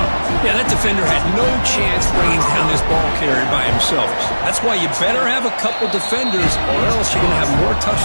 Yeah, that defender had no chance bringing down this ball carrier by himself. That's why you better have a couple defenders, or else you're going to have more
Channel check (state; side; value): inverted; both; correlation -1.00